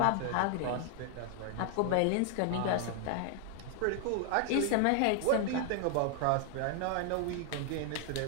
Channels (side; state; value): both; different; correlation 0.00